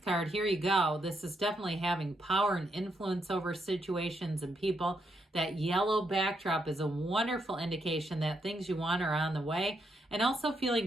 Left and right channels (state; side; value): normal; both; correlation 0.79